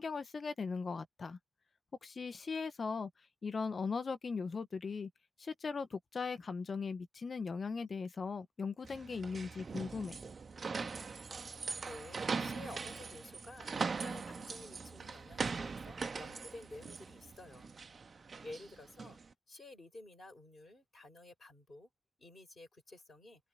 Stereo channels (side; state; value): both; normal; correlation 0.87